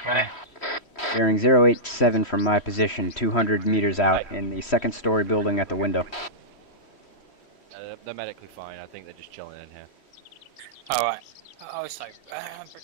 Vinny? Bearing 087 from my position, 200 meters out in the second story building at the window. They're medically fine. I think they're just chilling in here. Alright. Also,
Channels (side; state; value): right; late; 3.1 ms